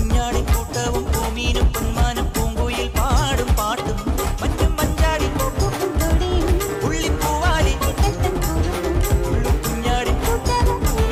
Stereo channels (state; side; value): identical; both; correlation 1.00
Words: കൂട്ടവും പൂമീനും പൊന്മാനും പൂങ്കുയിൽ പാടും പാട്ടും മറ്റും മഞ്ചാടി പുള്ളിപ്പൂവാലി കുഞ്ഞാടി